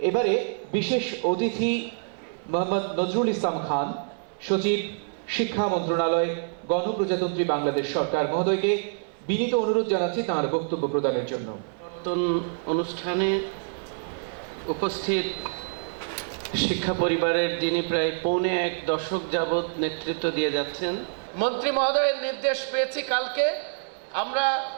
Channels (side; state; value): left; silent; 61 dB below the other